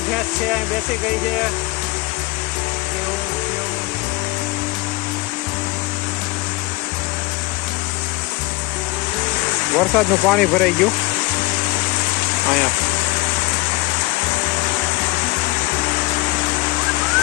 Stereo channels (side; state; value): right; quieter; 21.9 dB